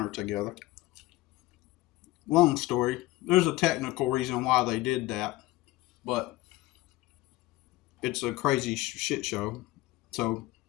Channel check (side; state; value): right; quieter; 18.3 dB